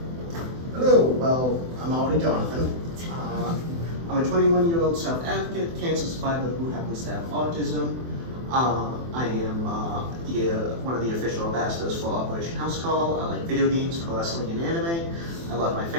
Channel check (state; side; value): late; left; 24 ms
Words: Hello, well, I'm already Jonathan. I'm a 21-year-old self-advocate, cancer survivor who happens to have autism. I am one of the official ambassadors for Operation House Call. I like video games, pro wrestling, and anime. I love my